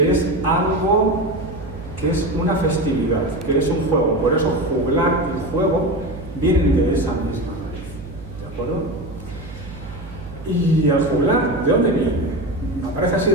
es algo que es una festividad, que es un juego. Por eso juglar y juego vienen de esa misma raíz, ¿de acuerdo? Y el juglar, ¿de dónde viene? Aparece así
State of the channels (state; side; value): noise; right; hum, 15 dB below the sound